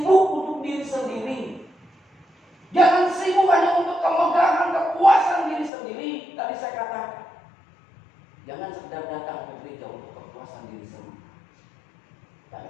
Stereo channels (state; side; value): drops out; right; at 5.7 s